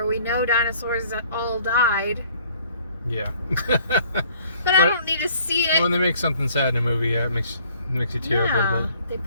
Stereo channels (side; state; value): both; inverted; correlation -0.58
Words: we know dinosaurs all died. Yeah. but I don't need to see it. When they make something sad in a movie, it makes you tear up a little bit. They